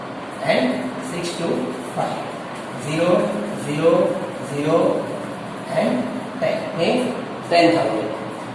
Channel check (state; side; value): identical; both; correlation 1.00